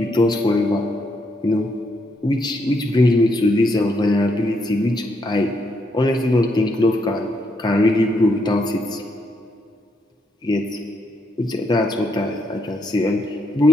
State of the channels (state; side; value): normal; both; correlation 0.77